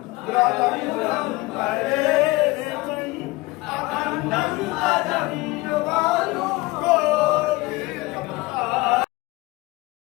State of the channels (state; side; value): quieter; right; 21.6 dB